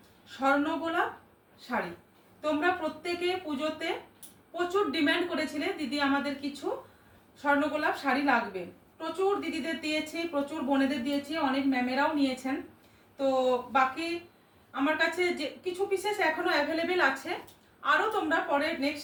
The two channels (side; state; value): both; identical; correlation 1.00